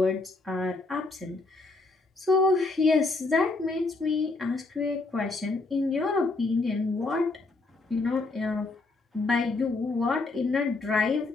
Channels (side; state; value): right; quieter; 3.4 dB